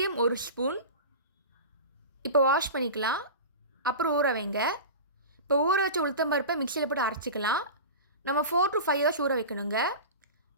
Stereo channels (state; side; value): inverted; both; correlation -0.30